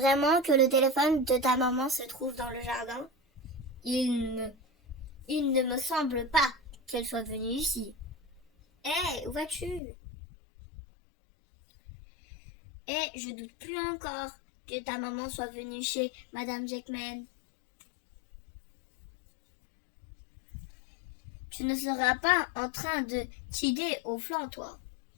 que le téléphone de ta maman se trouve dans le jardin? Il ne me semble pas qu'elle soit venue ici. Hé, où vas-tu? Je doute plus encore que ta maman soit venue chez Madame Jackman. Tu ne seras pas en train de tider au flanc, toi.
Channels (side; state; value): right; drops out; at 9.8 s